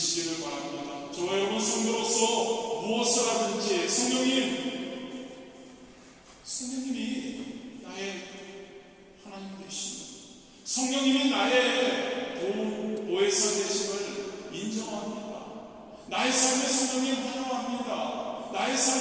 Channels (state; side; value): identical; both; correlation 1.00